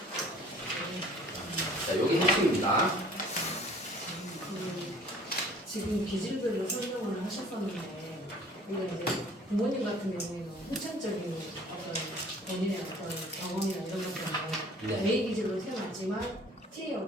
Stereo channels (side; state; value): both; normal; correlation 0.51